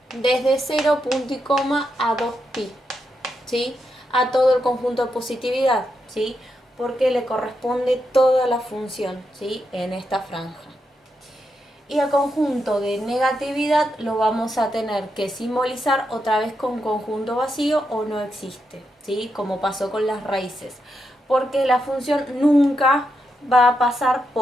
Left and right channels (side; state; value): both; normal; correlation 0.84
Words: desde 0, punto y coma, a 2pi, ¿sí? A todo el conjunto de positividad, ¿sí? Porque le corresponde toda la función, ¿sí? En esta franja. Y al conjunto de negatividad lo vamos a tener que simbolizar otra vez con conjunto vacío o no existe, ¿sí? Como pasó con las raíces. Porque la función nunca va a pasar